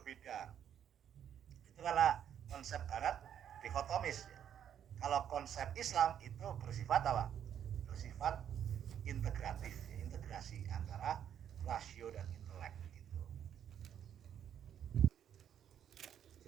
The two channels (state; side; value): quieter; left; 9.4 dB